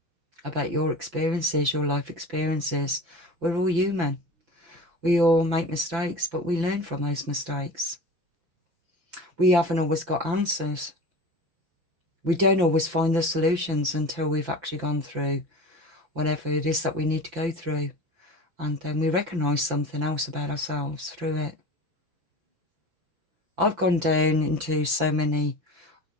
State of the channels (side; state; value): left; late; 5.9 ms